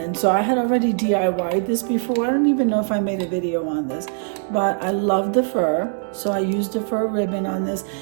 so I had already DIY'd this before. I don't even know if I made a video on this, but I love the fur, so I used a fur ribbon on this,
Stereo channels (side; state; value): left; silent; digital silence